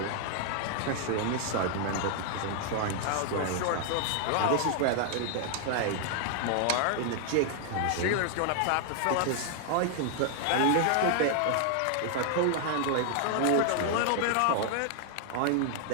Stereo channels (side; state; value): both; different; correlation 0.00